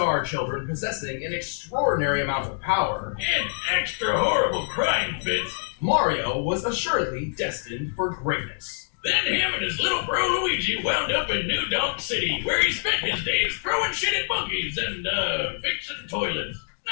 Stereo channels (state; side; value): silent; right; digital silence